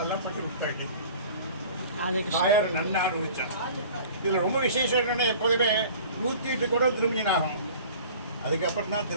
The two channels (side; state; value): both; inverted; correlation -0.45